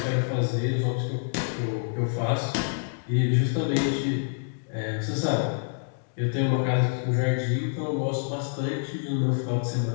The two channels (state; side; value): silent; right; digital silence